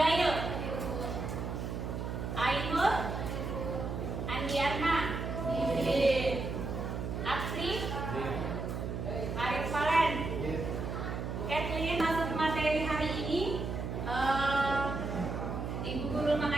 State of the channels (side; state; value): right; noise; hum, 4 dB below the sound